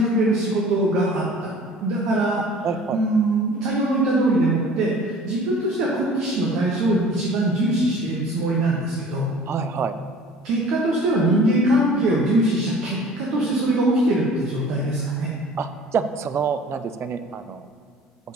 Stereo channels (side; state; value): both; normal; correlation 0.47